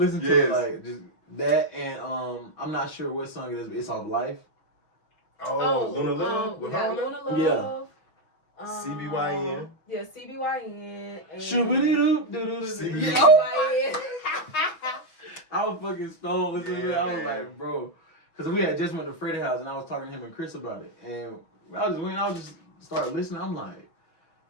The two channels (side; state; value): right; late; 6.2 ms